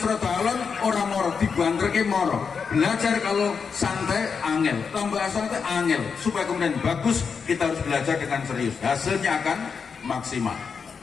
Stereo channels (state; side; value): quieter; right; 5.8 dB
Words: alon ora moro, dibanterke moro. Belajar kalau santai angel, tambah santai angel, supaya kemudian bagus kita harus belajar dengan serius. Hasilnya akan maksimal.